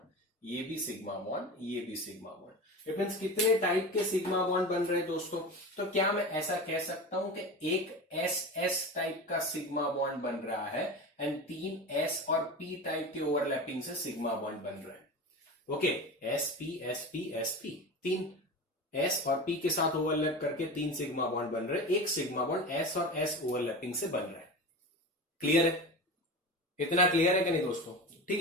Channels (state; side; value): normal; both; correlation 0.28